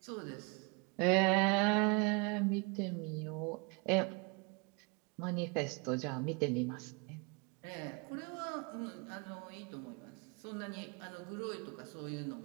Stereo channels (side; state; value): left; quieter; 31.9 dB